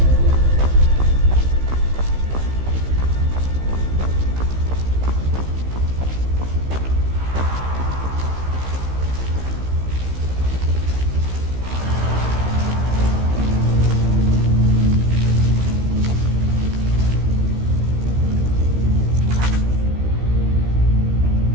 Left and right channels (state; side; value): late; left; 15 ms